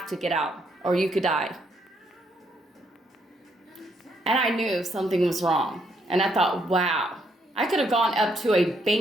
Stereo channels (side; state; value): both; normal; correlation 0.73